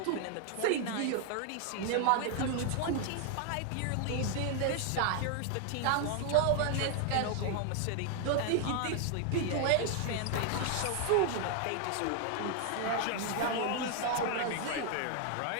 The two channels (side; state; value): both; different; correlation 0.00